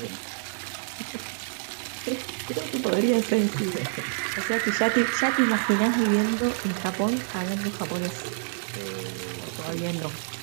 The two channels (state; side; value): silent; left; digital silence